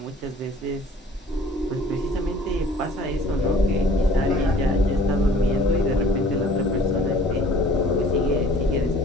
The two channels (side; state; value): both; normal; correlation 0.51